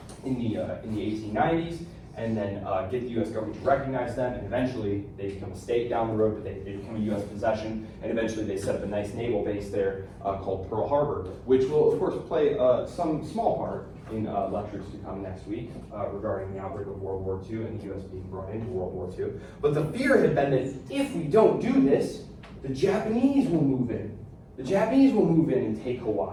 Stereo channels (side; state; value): both; identical; correlation 1.00